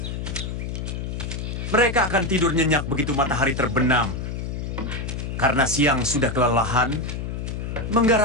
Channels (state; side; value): noise; left; hum, 5 dB below the sound